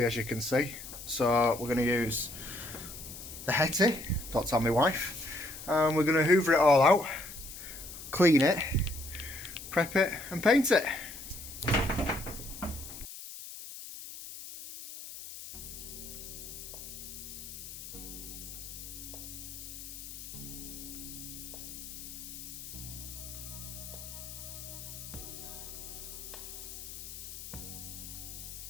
as you can see. So we're going to use the Hetty, don't tell my wife, and we're going to hoover it all out, clean it, prep it and paint it.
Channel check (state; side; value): noise; left; hiss, 11 dB below the sound